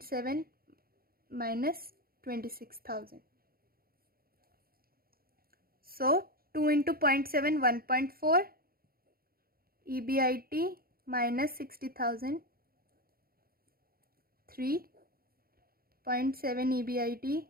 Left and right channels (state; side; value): late; left; 0.43 ms